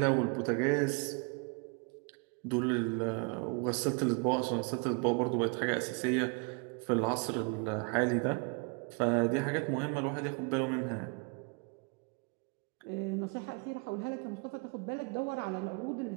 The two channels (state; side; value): quieter; left; 34.1 dB